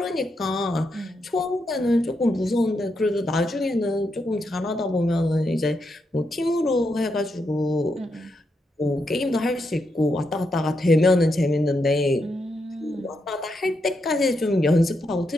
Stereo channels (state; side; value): normal; both; correlation 0.82